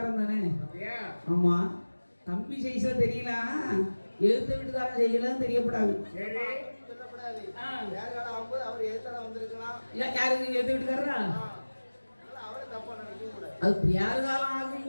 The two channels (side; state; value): both; inverted; correlation -1.00